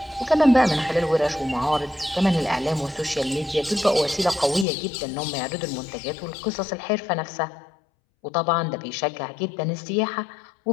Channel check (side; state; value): right; drops out; at 4.7 s